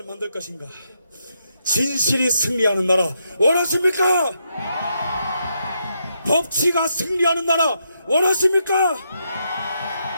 만들 것인가? 진실이 승리하는 나라 원하십니까? 법치가 승리하는 나라 원하십니까?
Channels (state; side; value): inverted; both; correlation -0.80